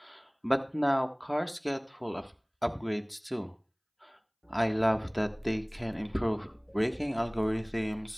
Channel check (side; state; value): both; identical; correlation 1.00